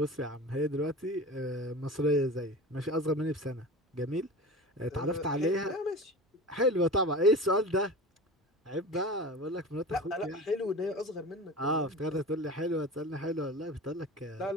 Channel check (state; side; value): normal; both; correlation 0.32